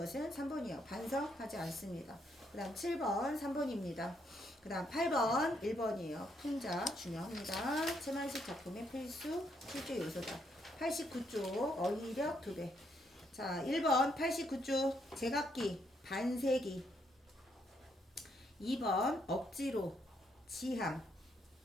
3번이요. 반성하지 않습니다. 그 다음 7번 3번입니다. 그 다음 8번 1번이에요. 풍자 중요합니다. 최만식 작품의 필수 출제 요소다. 89쪽 어휘력 2배. 자, 1번 89쪽 제각기 반세기. 2번 억지로 지향.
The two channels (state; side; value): normal; both; correlation 0.74